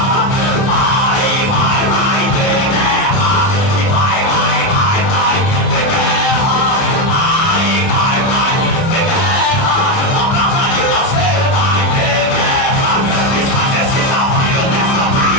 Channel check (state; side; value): late; right; 29 ms